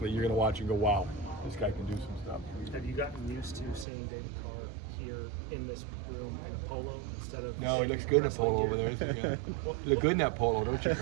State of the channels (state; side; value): drops out; left; at 3.9 s